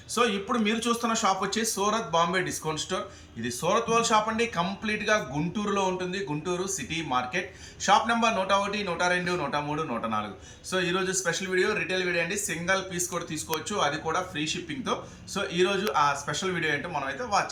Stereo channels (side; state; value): both; identical; correlation 1.00